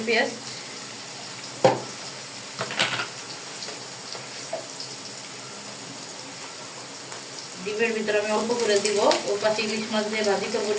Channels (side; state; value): both; identical; correlation 1.00